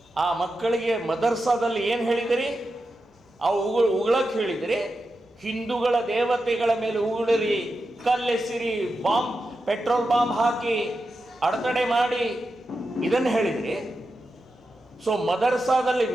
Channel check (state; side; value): normal; both; correlation 0.89